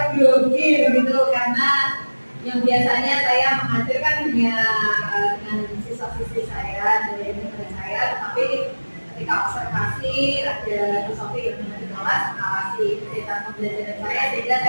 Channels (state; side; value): inverted; both; correlation -1.00